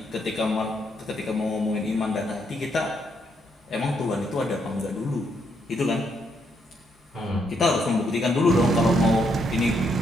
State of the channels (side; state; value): both; normal; correlation 0.75